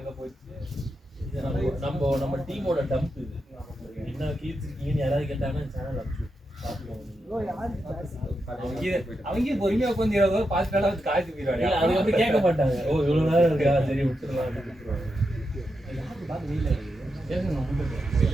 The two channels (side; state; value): both; normal; correlation 0.86